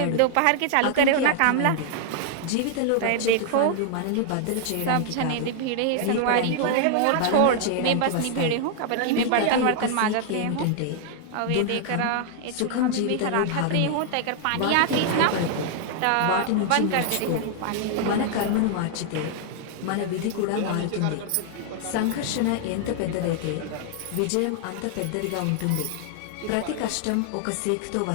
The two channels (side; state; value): both; different; correlation 0.00